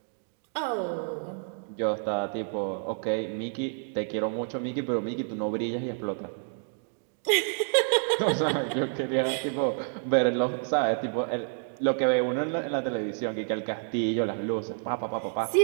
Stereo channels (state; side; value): silent; left; 59 dB below the other